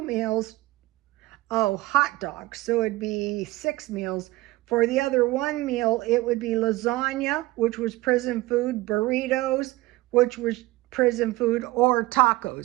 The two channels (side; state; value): left; quieter; 19.3 dB